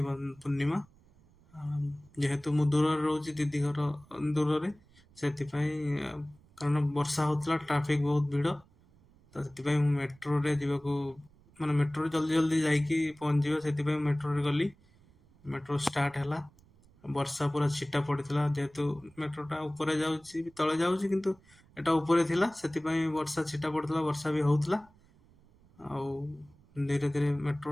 पूर्णिमा। जेहेतु मु दूर रोची दीदी घर दूर रे कारण वर्षा होतला ट्रैफिक बहुत भीड़। तो से मेट्रो रे जीवाकू माने मेट्रो रे जल्दी जल्दी जाइकी पहुंच से मेट्रो रे गली। मेट्रो स्टार्ट है। वर्षा पूरा छिटा पड़ता जेहेतु मेट्रोटा ऊपर जाऊँगी तले जाऊँगी किंतु एटा ऊपर थिला सेतिपई वर्षा छिटा पड़ता वर्षा भी होउतला। आउ धीरे धीरे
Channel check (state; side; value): noise; right; rumble, 28 dB below the sound